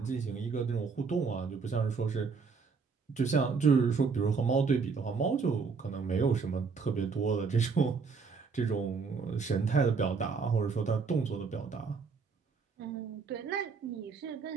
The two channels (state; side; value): quieter; left; 5.1 dB